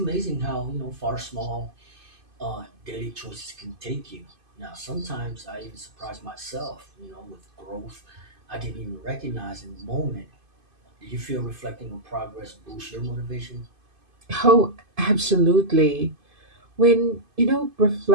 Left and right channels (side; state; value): left; late; 2.5 ms